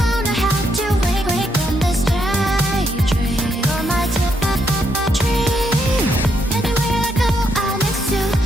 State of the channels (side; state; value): both; normal; correlation 0.76